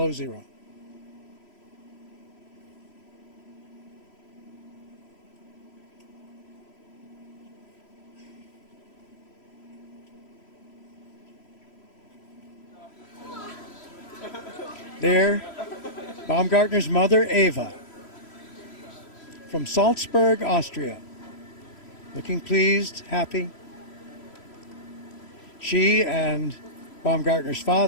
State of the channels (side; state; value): right; late; 3.0 ms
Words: zero. There, Baumgartner's mother, Eva, from Salzburg, Austria, looking pleased, happy. She and Baumgartner's